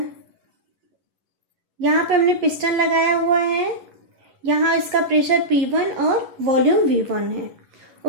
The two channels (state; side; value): late; left; 11 ms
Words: यहाँ पे हमने पिस्टन लगाया हुआ है, यहाँ इसका प्रेशर P1 और वॉल्यूम V1 है।